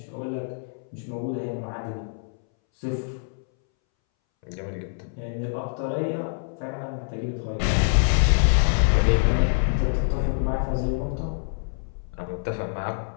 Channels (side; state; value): right; silent; 61 dB below the other